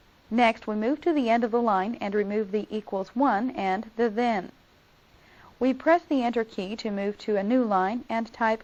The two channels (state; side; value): identical; both; correlation 1.00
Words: Next, we move to the end of the line and remove the equals 1 and the then. We press the Enter key to move to a new line and type